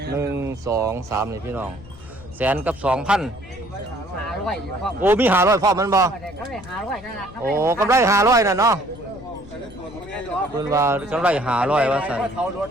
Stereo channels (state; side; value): noise; left; rumble, 19 dB below the sound